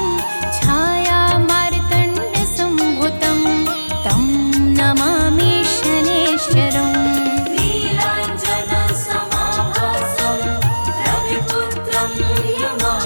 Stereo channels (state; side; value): inverted; both; correlation -1.00